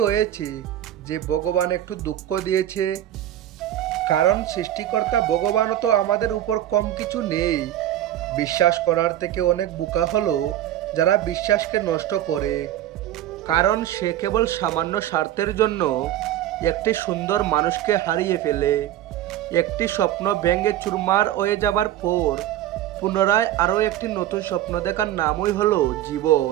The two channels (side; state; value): left; quieter; 12.6 dB